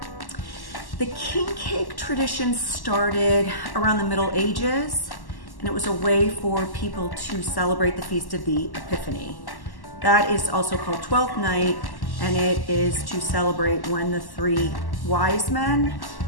The king cake tradition started around the Middle Ages, and it was a way for people to celebrate the Feast of the Epiphany. That is also called Twelfth Night, and it is to celebrate when the three wise men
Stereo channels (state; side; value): late; right; 1.1 ms